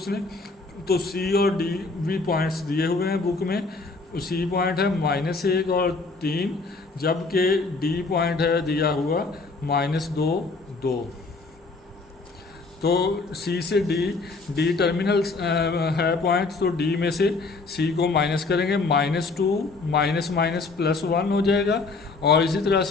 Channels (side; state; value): right; quieter; 3.8 dB